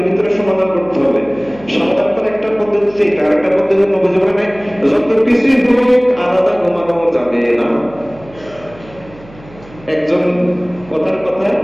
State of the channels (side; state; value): right; noise; hum, 21 dB below the sound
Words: ভিতরে সমাধান করতে হবে। সমাধান করার একটা পদ্ধতি আছে, আরেকটা পদ্ধতি নবী বলেন যত কিছুই হোক আলাদা ঘুমানো যাবে না। একজন কথার কথা